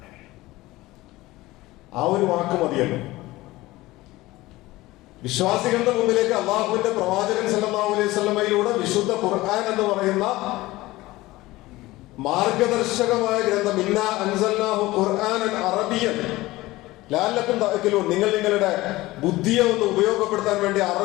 ആ ഒരു വാക്ക് മതിയല്ലോ. വിശ്വാസികളുടെ മുമ്പിലേക്ക് അള്ളാഹുവിന്റെ പ്രവാചകൻ സല്ലല്ലാഹു അലൈഹി വസല്ലമയിലൂടെ വിശുദ്ധ ഖുർആൻ എന്ന് പറയുന്ന മാർഗദർശകമായ ഗ്രന്ഥം, ഇന്നാ അൻസൽനാഹു ഖുർആനൻ അറബിയൻ ലഅല്ലക്കും തഅഖിലൂൻ, നിങ്ങൾ നിങ്ങളുടെ ബുദ്ധിയെ ഒന്ന് ഉപയോഗപ്പെടുത്താൻ വേണ്ടി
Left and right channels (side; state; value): right; quieter; 18.8 dB